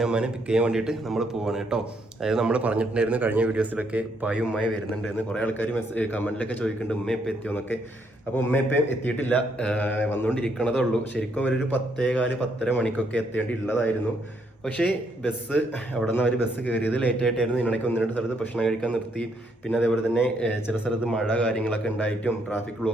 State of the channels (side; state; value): both; normal; correlation 0.73